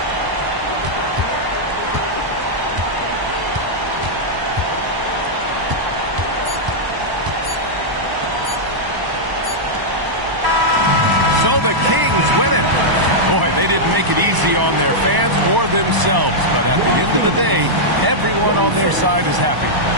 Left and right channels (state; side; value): late; left; 1.0 ms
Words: So the Kings win it. Boy, they didn't make it easy on their fans or themselves. But at the end of the day, everyone on their side is happy.